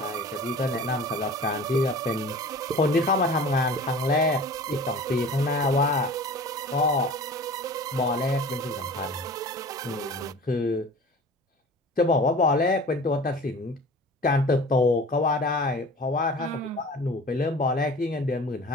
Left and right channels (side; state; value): both; normal; correlation 0.41